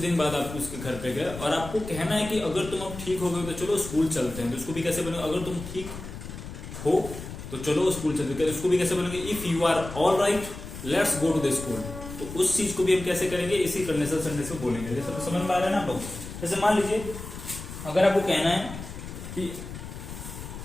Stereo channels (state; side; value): noise; left; rumble, 11 dB below the sound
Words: बाद आप उसके घर पे गए और आपको कहना है कि अगर तुम अब ठीक हो गए तो चलो स्कूल चलते हैं। तो उसको भी कैसे बोलेंगे, अगर तुम ठीक हो तो चलो स्कूल चलते हैं। उसको भी कैसे बोलेंगे, if you are all right let's go to the school. तो उस चीज को भी हम कैसे करेंगे, इसी कंडीशनल सेंटेंस में बोलेंगे। जैसे समझ में आ रहा है ना आप लोग। जैसे मान लीजिए अगर आपको कहना है कि